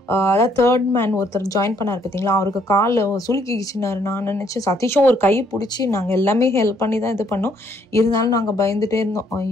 அதாவது 3rd மேன் ஒருத்தர் ஜாயின் பண்ணார் பார்த்தீங்களா, அவருக்கு கால் சுலுக்கிச்சுனாரு. நான் நினச்சேன் சதீஷும் ஒரு கை பிடிச்சி நாங்கள் எல்லாமே ஹெல்ப் பண்ணி தான் இது பண்ணோம். இருந்தாலும் நாங்கள் பயந்துகிட்டே இருந்தோம்,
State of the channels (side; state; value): both; normal; correlation 0.68